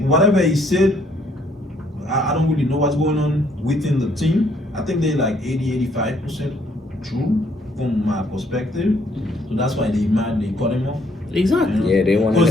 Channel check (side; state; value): both; normal; correlation 0.67